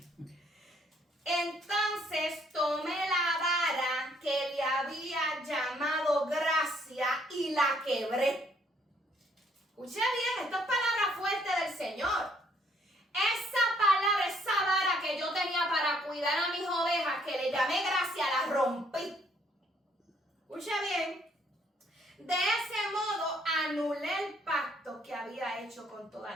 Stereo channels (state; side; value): normal; both; correlation 0.66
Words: Entonces tomé la vara que le había llamado gracia y la quebré. Escuche bien, esto es palabra fuerte del Señor. Esa palabra, esa vara que yo tenía para cuidar a mis ovejas, que le llamé gracia, la rompí. Escuche bien. De ese modo anulé el pacto que había hecho con todas